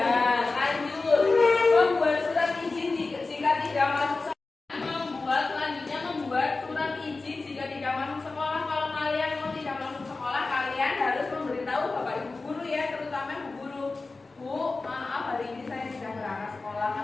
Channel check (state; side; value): quieter; right; 3.7 dB